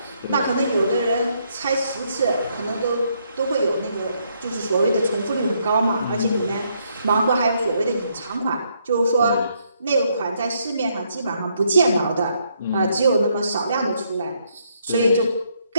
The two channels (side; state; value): both; inverted; correlation -0.73